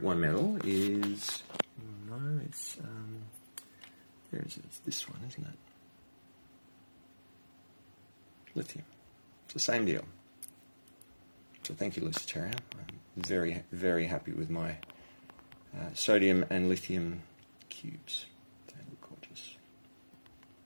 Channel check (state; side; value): inverted; both; correlation -1.00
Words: 1 metal is... No, it's... where is it? It's this one, isn't it? Lithium. It's the same deal. So thank you, Luciteria. I'm very, very happy with my sodium and lithium cubes. They look gorgeous.